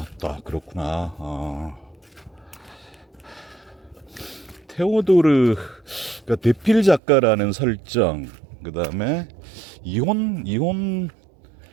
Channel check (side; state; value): left; drops out; at 7.0 s